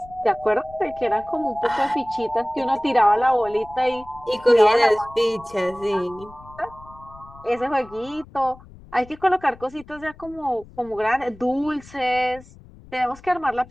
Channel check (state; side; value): noise; left; rumble, 21 dB below the sound